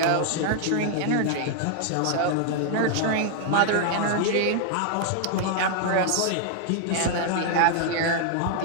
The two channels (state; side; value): different; both; correlation 0.00